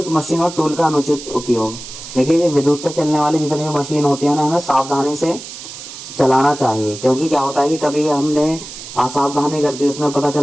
मशीन और टूल का अनुचित उपयोग, देखिए विद्युत से चलने वाली जितनी भी मशीन होती है ना, हमें सावधानी से चलाना चाहिए, क्योंकि क्या होता है कि कभी हमने असावधानी कर दी, उसमें पता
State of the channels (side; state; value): right; noise; hiss, 12 dB below the sound